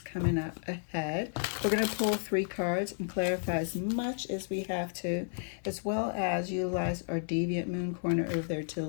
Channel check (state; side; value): silent; right; 56 dB below the other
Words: coming up ahead. We're going to pull 3 cards and clarify as much as we have to, as well as utilize our deviant moon corner over there to the